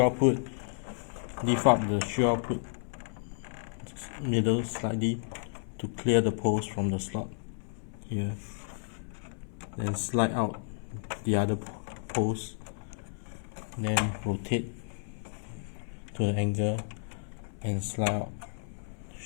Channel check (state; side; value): silent; right; 57 dB below the other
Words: output, lift up the shield output middle slightly to clear the post from the slot here. Then slide out the other post, then rotate to the angle and slide out